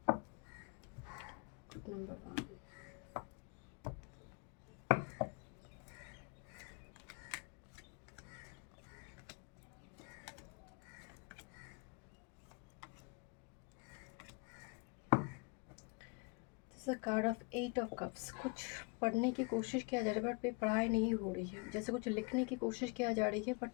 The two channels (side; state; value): right; quieter; 32.2 dB